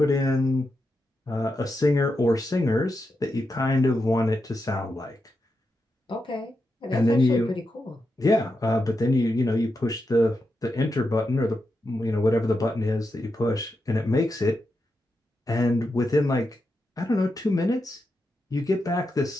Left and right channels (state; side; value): normal; both; correlation 0.87